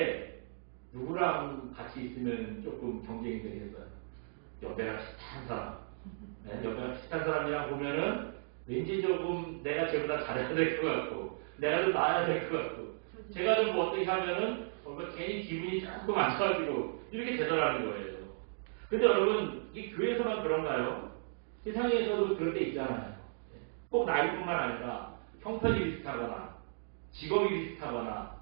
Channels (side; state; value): left; silent; digital silence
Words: 누구랑 같이 있으면 조금 경쟁이 되겠어요. 옆에가 비슷한 사람. 네, 옆에가 비슷한 사람이랑 보면은 왠지 조금 내가 쟤보다 잘해야 될 것 같고, 내가 좀 나아야 될 것 같고, 제가 좀 어떻게 하면은, 괜히 기분이 조금 안 좋아지고, 이렇게 되더라는 거예요. 근데 여러분, 이 교회에서만 그런가요? 세상에서도 그럴 때 있잖아요. 꼭 나이뿐만 아니라, 형편이 비슷하거나, 직업이 비슷하거나,